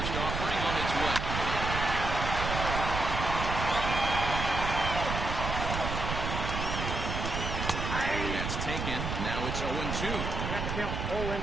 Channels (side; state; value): right; noise; rumble, 3 dB below the sound